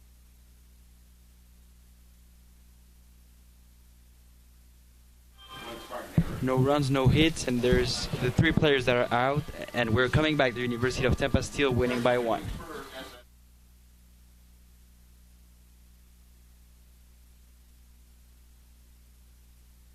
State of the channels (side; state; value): both; identical; correlation 1.00